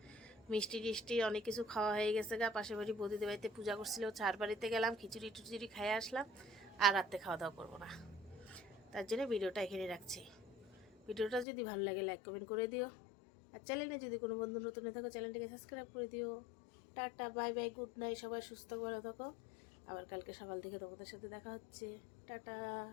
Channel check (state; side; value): drops out; right; at 11.5 s